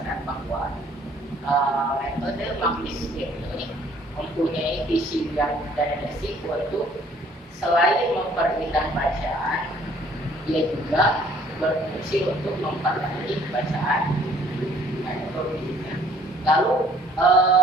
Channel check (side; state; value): both; normal; correlation 0.59